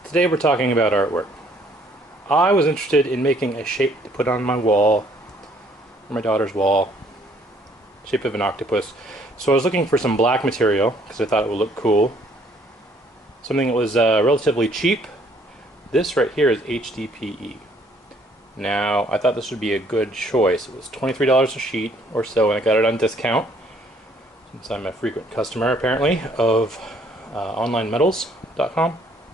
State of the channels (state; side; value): normal; both; correlation 0.63